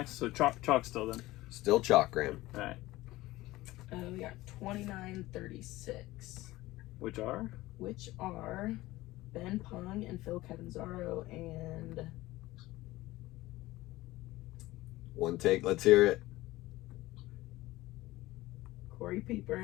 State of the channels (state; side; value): quieter; right; 18.1 dB